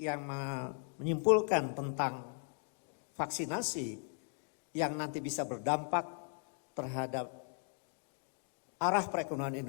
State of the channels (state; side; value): silent; right; 53 dB below the other